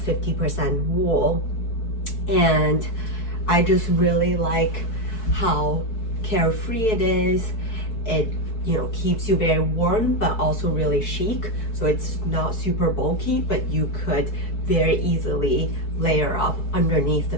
50% wool. And I just really like how carefree it is. It keeps you very warm, but also really chic. So it's not super bulky, but you could very easily layer up underneath the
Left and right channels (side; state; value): right; late; 4.6 ms